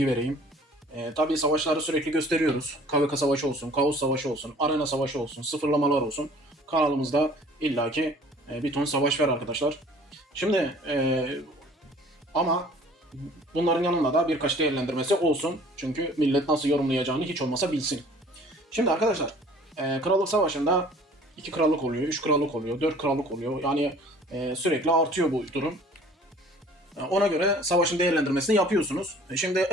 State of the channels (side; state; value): both; normal; correlation 0.51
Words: vereyim. Tabii savaşları sürekli gösteriyoruz. KVK savaşı olsun, Kaos savaşı olsun, Arena savaşı olsun, sıfırlamalar olsun. Kanalımızda illaki bir ton savaş var arkadaşlar. Şimdi ama bunların yanında da birkaç değerlendirmesi olsun. Çünkü millet nasıl yorumlayacağını hiç olmasa bilsin. Şimdi arkadaşlar, Krallık Savaşı'nda 2 krallık oluyor, 3 krallık oluyor, 4 krallık oluyor. Yani sürekli artıyor bu durum. Ona göre savaşın değerlendirmesini yapıyorsunuz. Şimdi